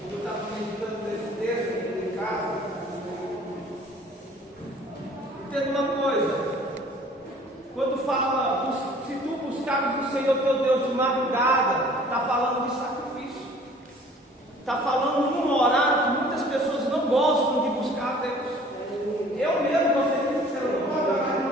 Eu estava meditando nesse texto aqui em casa. Entenda uma coisa. Quando fala, se tu buscares o Senhor teu Deus de madrugada, está falando de sacrifício. Está falando num horário que muitas pessoas não gostam de buscar a Deus. Eu mesmo, você disse que eu não gosto de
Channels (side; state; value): both; normal; correlation 0.51